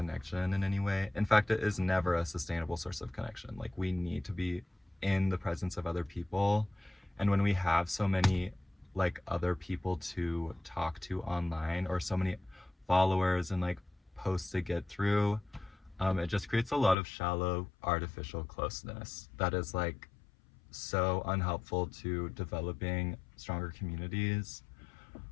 in any way. In fact, it is never a sustainable source of connection. Like, we need to be in the presence of other people. And when we have so many like other people to talk to online, or so many followers and like posts to get through, it just creates a lot of shallow artificial closeness that is like so unhelpful to developing stronger communities.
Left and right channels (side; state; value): right; drops out; at 16.9 s